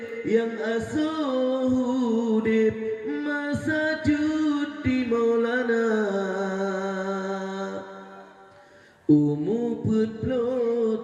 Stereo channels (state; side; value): identical; both; correlation 1.00